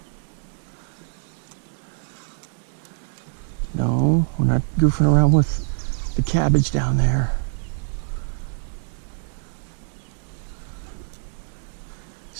No, we're not goofing around with the cabbage down there.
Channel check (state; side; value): silent; left; digital silence